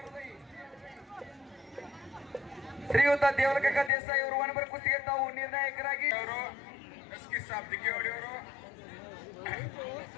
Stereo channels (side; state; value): right; drops out; at 3.9 s